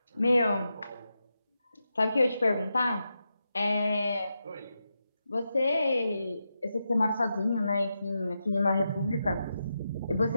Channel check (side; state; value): both; inverted; correlation -0.87